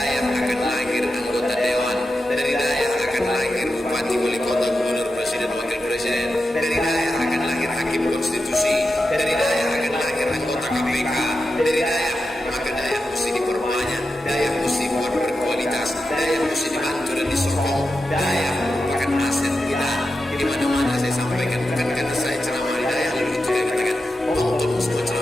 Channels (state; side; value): normal; both; correlation 0.90